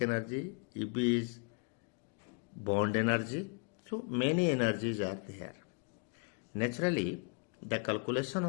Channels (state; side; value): quieter; right; 34.9 dB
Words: energy, EB is bond energy. So many energies are there. Naturally, the calculation